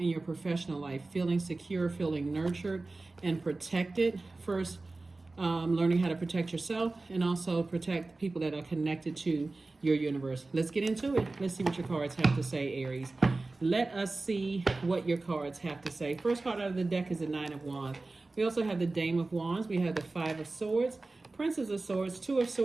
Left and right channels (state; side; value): quieter; left; 3.3 dB